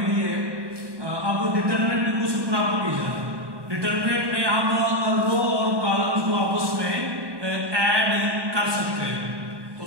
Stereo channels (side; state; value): left; late; 1.2 ms